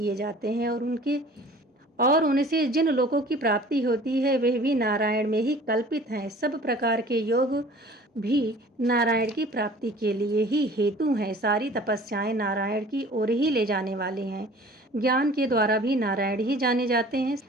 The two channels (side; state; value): both; normal; correlation 0.47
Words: जाते हैं और उनसे जिन लोगों की प्राप्ति होती है वे भी नारायण में ही कल्पित हैं। सब प्रकार के योग भी नारायण की प्राप्ति के लिए ही हेतु हैं। सारी तपस्याएं नारायण की ओर ही ले जाने वाली हैं। ज्ञान के द्वारा भी नारायण ही जाने जाते हैं।